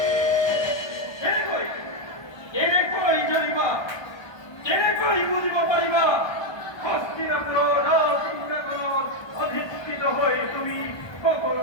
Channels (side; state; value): right; late; 1.2 ms